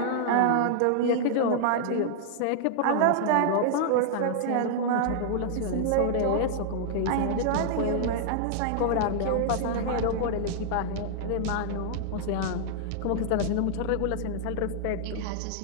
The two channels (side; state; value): both; different; correlation -0.01